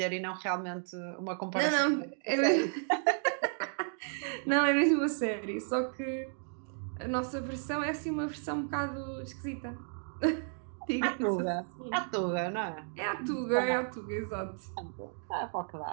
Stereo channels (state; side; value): silent; left; 56 dB below the other